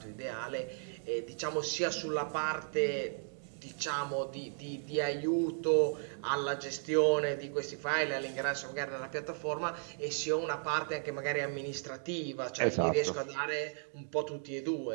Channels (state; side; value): silent; left; digital silence